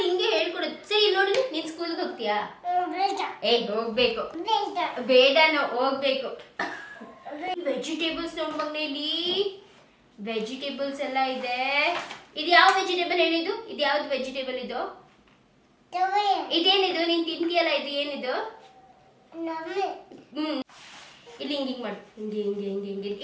ಹಿಂಗೆ ಹೇಳ್ಕೊಡುತ್ತೆ. ಸರಿ, ಇಲ್ಲಿ ನೋಡಿ, ನೀನು ಸ್ಕೂಲ್ಗೆ ಹೋಗ್ತೀಯಾ? ಹೋಗ್ಬೇಕು. ಬೇಡನೋ, ಹೋಗ್ಬೇಕು. ವೆಜಿಟೇಬಲ್ಸ್ ನೋಡಿ ಮಗನೇ, ಇಲ್ಲಿ ವೆಜಿಟೇಬಲ್ಸ್ ಎಲ್ಲ ಇದೆ. ಇದು ಯಾವ ವೆಜಿಟೇಬಲ್ ಹೇಳಿದ್ದು? ಇದು ಯಾವ್ದು ವೆಜಿಟೇಬಲ್ ಇದು? ಇದೇನಿದು? ನೀನ್ ತಿಂತೀಯಲ್ಲ, ಇದು ಏನಿದು? ಇಲ್ಲಿ ಹಿಂಗೆ ಮಾಡು. ಹಿಂಗೆ ಹಿಂಗೆ ಹಿಂಗೆ ಹಿಂಗೆ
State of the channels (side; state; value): both; identical; correlation 1.00